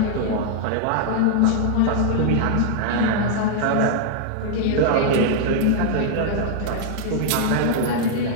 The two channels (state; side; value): different; both; correlation 0.00